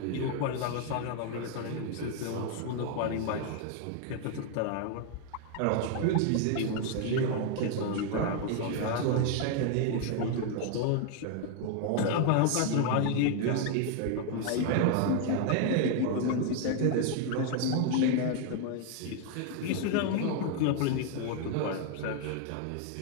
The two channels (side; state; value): both; different; correlation 0.00